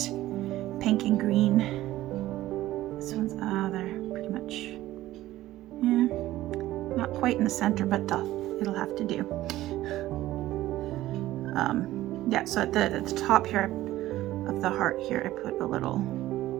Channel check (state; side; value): quieter; left; 15.4 dB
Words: pink and green. This one's, they're pretty much, yeah, not quite in the center, but it'll have to do. Yeah, so at the top here of the heart here, I put a little